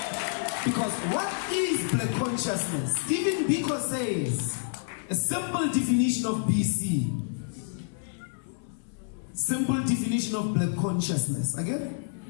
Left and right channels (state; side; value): silent; right; 59 dB below the other